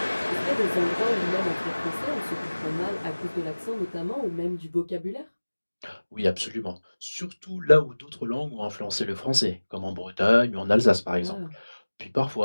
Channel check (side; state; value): both; inverted; correlation -1.00